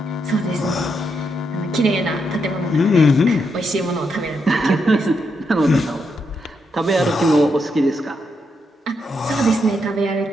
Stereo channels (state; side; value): normal; both; correlation 0.81